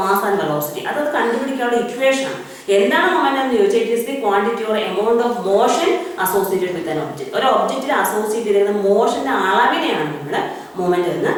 mass and velocity. അത് കണ്ടുപിടിക്കാനുള്ള ഇക്വേഷൻ ആണ്. എന്താണ് മൊമെന്റം എന്ന് ചോദിച്ചാൽ it is the quantity or amount of motion associated with an object. ഒരു ഒബ്ജക്റ്റിൽ അസോസിയേറ്റ് ചെയ്യുന്ന മോഷന്റെ അളവിനെയാണ് നമ്മൾ മൊമെന്റം എന്ന്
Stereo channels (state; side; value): identical; both; correlation 1.00